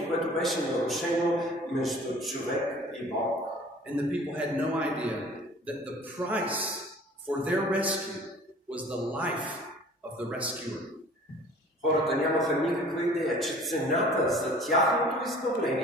което беше нарушено между човек и Бог. And the people had no idea that the price for their rescue was the life of the rescuer. Хората нямаха никаква идея, че цената за тяхното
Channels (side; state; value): both; normal; correlation 0.48